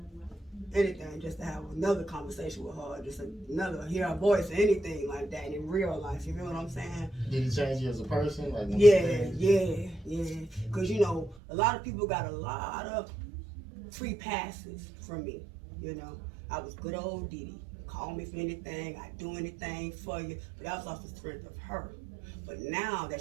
anything just to have another conversation with her, just hear her voice or anything like that in real life. You know what I'm saying? Did it change you as a person? Like yeah. Because you know, a lot of people got a lot of free passes from me. You know, I was good old Dee Dee. Call me for anything, I'd do anything for you. But that was off the strength of her. But now that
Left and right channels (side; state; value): left; drops out; at 11.4 s